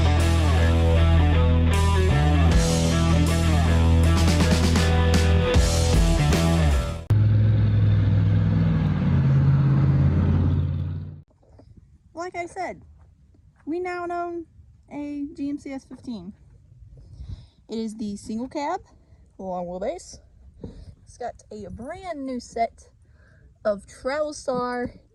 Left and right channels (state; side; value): identical; both; correlation 1.00